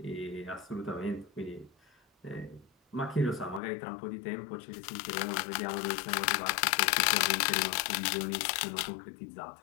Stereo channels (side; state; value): right; drops out; at 3.6 s